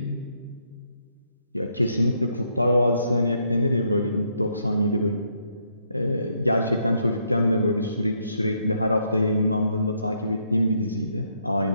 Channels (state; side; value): inverted; both; correlation -0.74